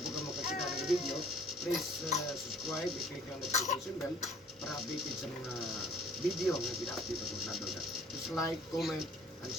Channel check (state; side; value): normal; both; correlation 0.54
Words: ka makakita ng video, please subscribe, i-click ang notification bell para updated sa mga video na pina-update ako sa doon. Just like, comment, and